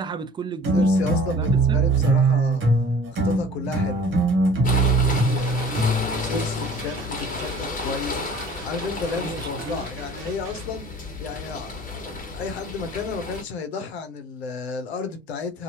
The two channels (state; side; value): normal; both; correlation 0.48